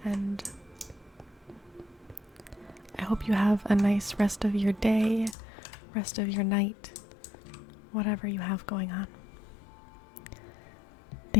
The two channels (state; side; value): drops out; right; at 5.4 s